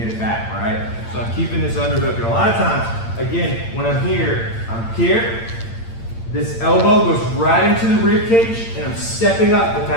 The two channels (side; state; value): right; late; 8.8 ms